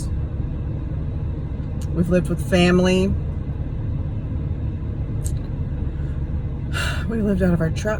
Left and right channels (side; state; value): both; identical; correlation 1.00